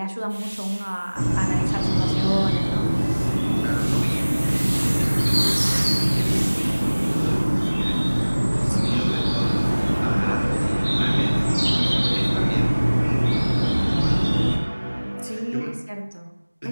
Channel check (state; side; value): inverted; both; correlation -1.00